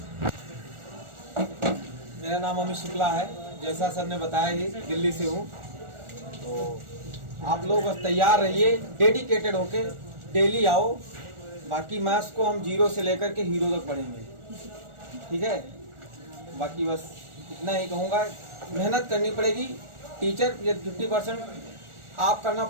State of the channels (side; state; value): left; late; 1.4 ms